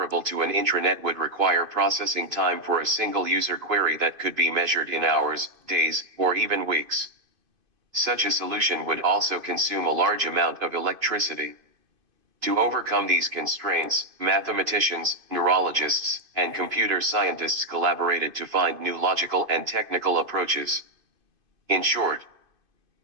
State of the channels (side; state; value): left; late; 2.5 ms